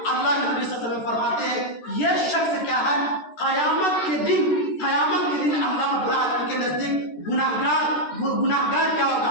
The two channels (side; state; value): right; late; 13 ms